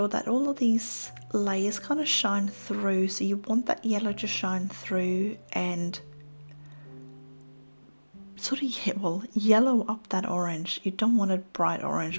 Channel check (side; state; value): both; inverted; correlation -1.00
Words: that all of these layers kind of shine through. So you want that yellow to shine through and sort of, well, yellow up that orange. You don't want it bright